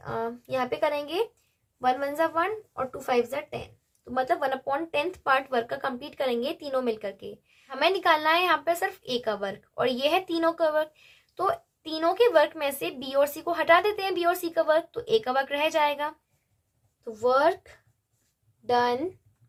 यहाँ पे करेंगे, 1 1 जा 1 और 2 5 जा 10, तो मतलब 1/10 पार्ट वर्क का कंप्लीट करेंगे तीनों मिलकर के। हमें निकालना है यहाँ पे सिर्फ ए का वर्क और ये है तीनों का वर्क, तो तीनों के वर्क में से बी और सी को हटा देते हैं, बी और सी का वर्क, तो ए का वर्क रह जाएगा। तो work done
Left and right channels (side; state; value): both; identical; correlation 1.00